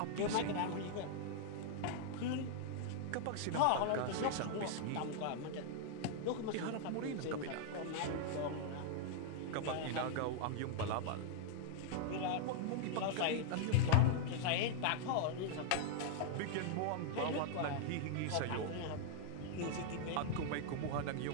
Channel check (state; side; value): different; both; correlation -0.01